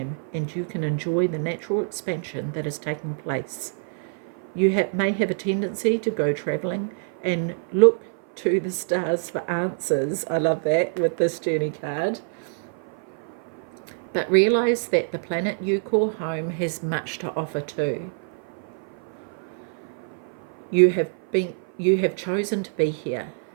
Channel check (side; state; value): left; silent; 56 dB below the other